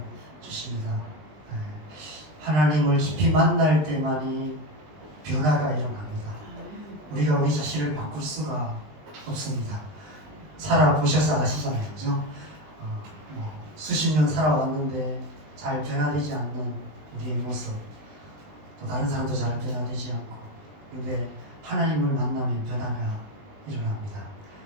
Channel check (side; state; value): left; late; 20 ms